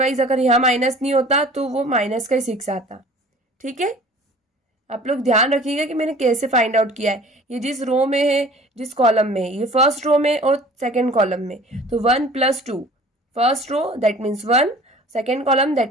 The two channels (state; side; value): normal; both; correlation 0.47